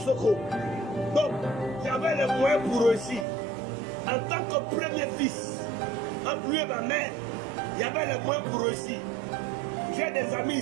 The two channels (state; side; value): drops out; left; at 3.2 s